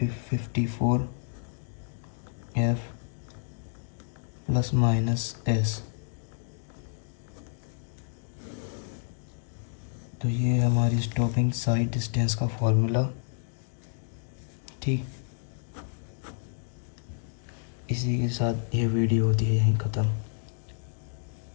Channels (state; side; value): silent; right; digital silence